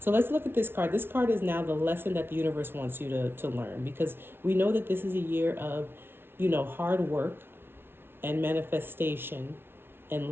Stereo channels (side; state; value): left; late; 0.11 ms